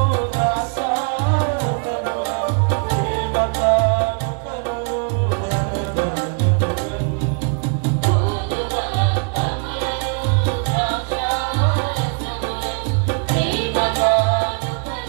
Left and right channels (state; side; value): quieter; left; 39.5 dB